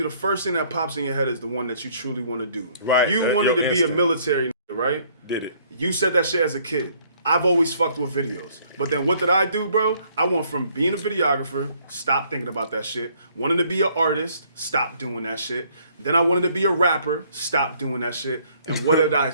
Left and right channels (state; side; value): inverted; both; correlation -0.63